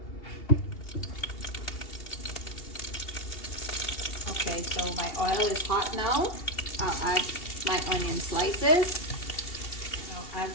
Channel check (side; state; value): right; late; 2.8 ms